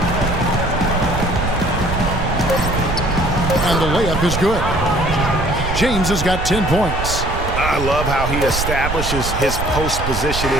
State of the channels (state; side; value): noise; right; rumble, 4 dB below the sound